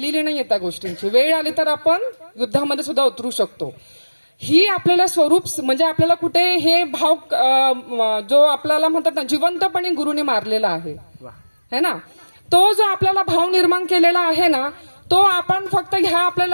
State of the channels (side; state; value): both; inverted; correlation -1.00